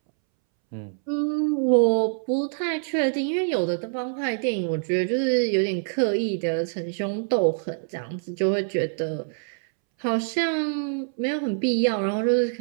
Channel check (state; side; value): silent; left; 62 dB below the other